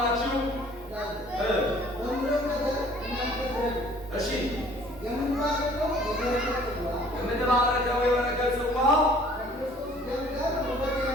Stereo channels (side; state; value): both; normal; correlation 0.54